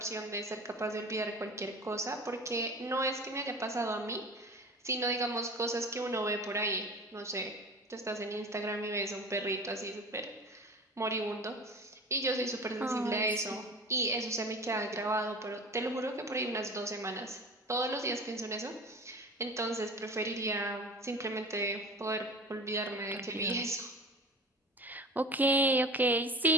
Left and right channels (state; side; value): normal; both; correlation 0.38